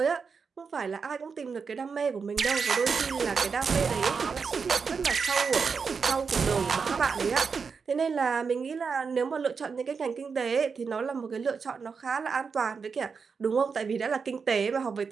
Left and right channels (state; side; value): quieter; left; 5.5 dB